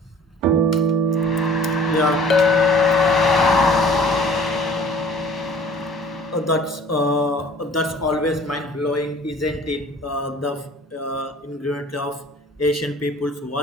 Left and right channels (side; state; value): both; normal; correlation 0.50